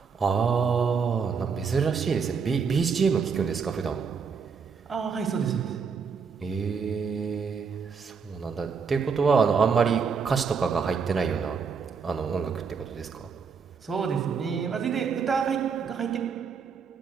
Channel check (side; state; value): left; quieter; 5.9 dB